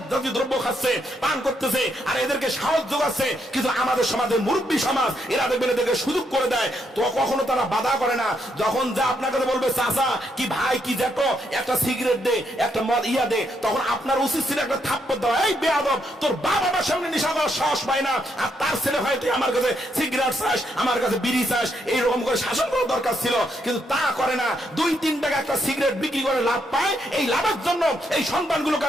জাতীয় দ্রব্য খাচ্ছে, পান করতেছে, আর এদেরকে সাহস যোগাচ্ছে। কিন্তু আমাদের সমাজের মুরব্বী সমাজ এরা দেখবেন এদেরকে সুযোগ করে দেয়, তো কখনো তারা বাধা করে না। যখন যা আপনার কাছে বলবে চাচা কি ভাই কি জ্যাঠো একটা সিগারেট দে, একটা মদ ইয়া দে, তখন আপনার উচিত ছিল একটা থাপ্পড় দেওয়া, এই বেয়াদব তোর বাবা আমার সামনে নেশা করার সাহস পায় না, আর তার ছেলে হয় তুই আমার কাছে সিগারেট চাস, আমার কাছে বিড়ি চাস, এইরকম করে শাসন করার দরকার ছিল। কিন্তু তা করে না, 2-3 টাকা একটা সিগারেট বিক্রি করে লাভ পায়, এই লাভের জন্য এই সন্তানগুলোকে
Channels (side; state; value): both; normal; correlation 0.77